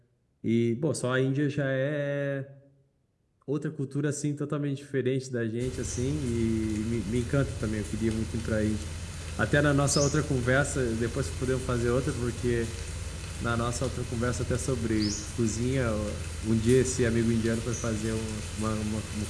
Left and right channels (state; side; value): identical; both; correlation 1.00